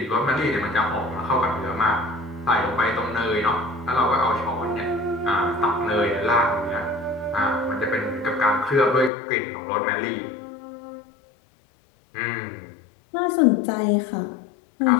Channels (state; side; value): drops out; right; at 9.1 s